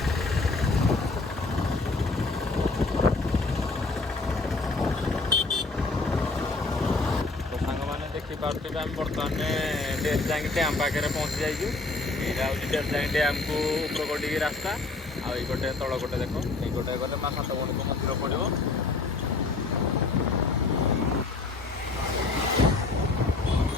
ଏବେ ଆମେ ବର୍ତ୍ତମାନ ଡେରଜାଙ୍ଗ ଡ୍ୟାମ୍ ପାଖରେ ପହଞ୍ଚି ଯାଇଛୁ। ଏଇଟା ହେଉଛି ଡେରଜାଙ୍ଗ ଡ୍ୟାମ୍କୁ ଉପର ଗୋଟିକି ରାସ୍ତା, ଆଉ ଏଇ ଗୋଟେ ତଳ ଗୋଟେ ଦେଖ, ଏଇ ଗୋଟେ ଗଲେ ମା ସାତଭଉଣୀଙ୍କ ମନ୍ଦିର ପଡ଼ିବ।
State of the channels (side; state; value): right; quieter; 3.6 dB